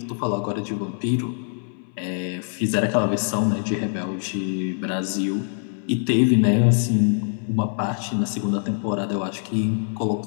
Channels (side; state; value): right; silent; 61 dB below the other